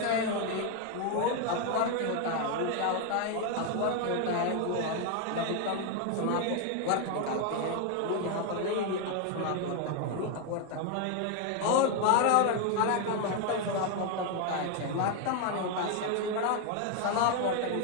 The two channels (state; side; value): different; both; correlation 0.01